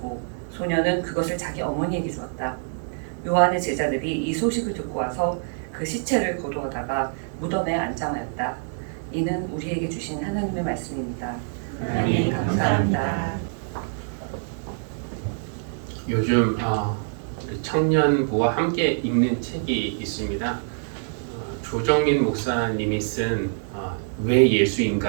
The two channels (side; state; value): left; silent; digital silence